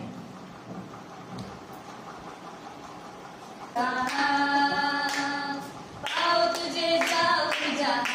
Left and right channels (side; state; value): both; identical; correlation 1.00